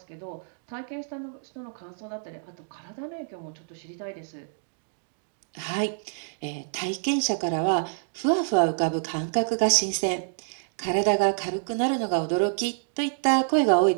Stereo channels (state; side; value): silent; left; digital silence